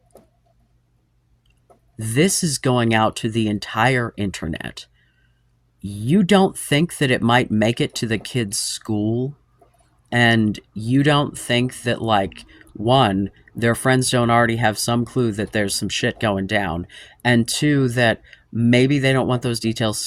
This is going out to the entire internet. You don't think that it might make it to the kids' school? And you don't think that, like, one, their friends don't already have some clue that there's some shit going down, and two, that maybe they don't want those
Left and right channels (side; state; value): both; identical; correlation 1.00